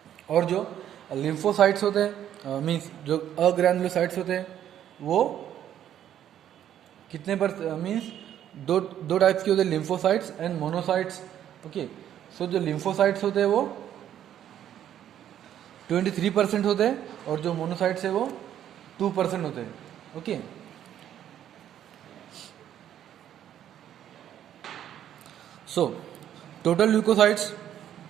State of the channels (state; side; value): quieter; left; 10.7 dB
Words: और जो लिम्फोसाइट्स होते हैं मीन्स जो अग्रैनुलोसाइट्स होते हैं वो कितने पर मीन्स दो टाइप्स के होते हैं, लिम्फोसाइट्स एंड मोनोसाइट्स. ओके, सो जो लिम्फोसाइट्स होते हैं वो 23% होते हैं और जो मोनोसाइट्स है वो 2% होते हैं. ओके, सो टोटल ल्यूकोसाइट्स